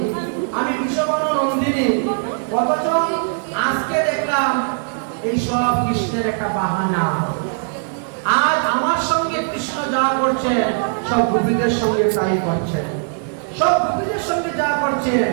আমি বিষবন নন্দিনী, অথচ আজকে দেখলাম এইসব কৃষ্ণের একটা বাহানা। আর আমার সঙ্গে কৃষ্ণ যা করছে সব গোপীদের সঙ্গে তাই করছেন, সব গোপীদের সঙ্গে যা করছেন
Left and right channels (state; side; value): silent; left; digital silence